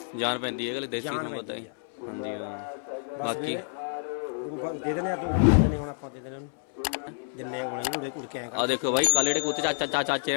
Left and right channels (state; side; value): silent; right; 59 dB below the other